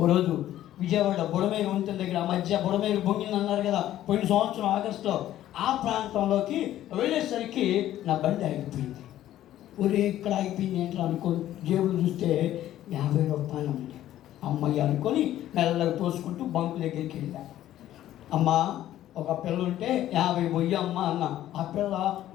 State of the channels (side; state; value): right; quieter; 13.0 dB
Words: రోజు విజయవాడ బుడమేరు వంతెన దగ్గర ఆ మధ్య బుడమేరు బొంగింది అన్నారు కదా పోయిన సంవత్సరం ఆగస్టులో, ఆ ప్రాంతంలోకి వెళ్ళేసరికి నా బండి ఆగిపోయింది. ఒరే ఇక్కడ ఆగిపోయింది ఏంటో అనుకోని జేబులు చూస్తే 50 రూపాయలు ఉంది. అమ్మయ్య అనుకొని మెల్లగా తోసుకుంటూ బంకు దగ్గరికి వెళ్ళా. అమ్మ ఒక పిల్ల ఉంటే 50 పోయి అమ్మ అన్న. ఆ పిల్ల